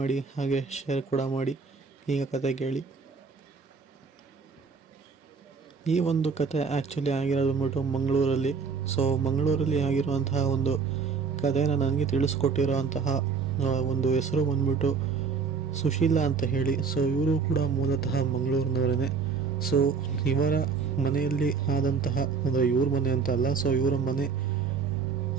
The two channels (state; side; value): quieter; left; 5.4 dB